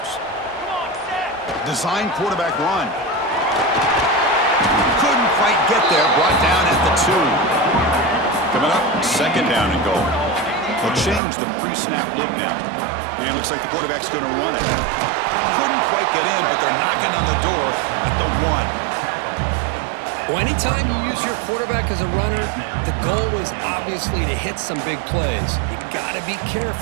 Design quarterback run. Couldn't quite get there. Brought down at the 2. Coming up, second down and goal. They'll change the pre-snap look now. And it looks like the quarterback's going to run it. Couldn't quite get in, but they're knocking on the door at the 1. Well, anytime you use your quarterback as a runner, the goal is obviously to hit some big plays. You got to be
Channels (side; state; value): left; drops out; at 11.2 s